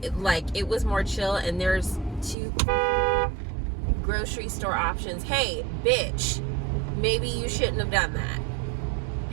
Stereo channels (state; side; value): drops out; left; at 2.4 s